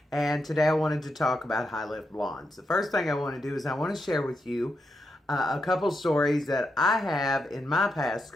and today I wanted to talk about high lift blondes. The first thing I want to do is I want to share with you a couple stories that I have in my past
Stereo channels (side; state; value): both; normal; correlation 0.84